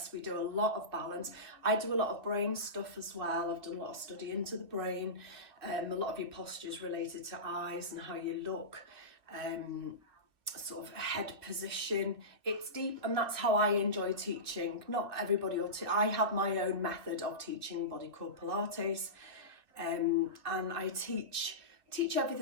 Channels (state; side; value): late; left; 2.6 ms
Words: we do a lot of balance. I do a lot of brain stuff as well. I've done a lot of study into the brain. A lot of your postures related to eyes and how you look, sort of head position. It's deep, and that's how I enjoy teaching. Not everybody will I have my own method of teaching body core Pilates, and I teach